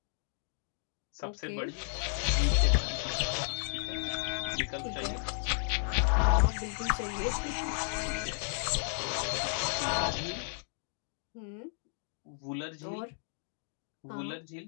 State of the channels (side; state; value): right; silent; digital silence